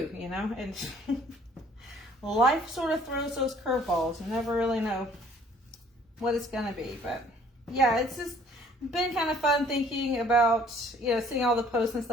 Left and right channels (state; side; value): normal; both; correlation 0.57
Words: you know? And life sort of throws those curveballs. You never really know what it's going to be. But yeah, it's just been kind of fun thinking about, you know, seeing all the posts and